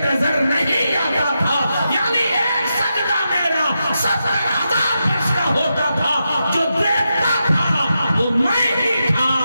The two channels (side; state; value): both; inverted; correlation -0.87